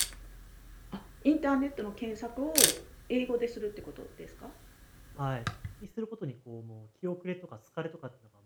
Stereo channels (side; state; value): both; identical; correlation 1.00